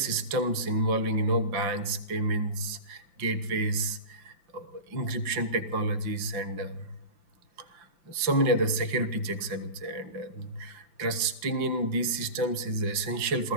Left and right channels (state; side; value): late; left; 5.8 ms